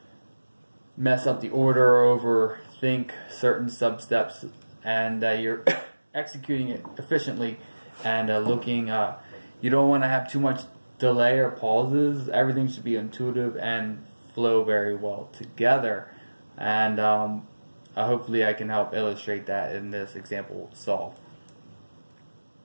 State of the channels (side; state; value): both; inverted; correlation -1.00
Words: mess up the order or overthink certain sub-steps, and you're executing it efficiently and you don't want to have too much delay or pauses. Everything should be intuitive and flow very well together, and hopefully I can help illustrate that in this example solve.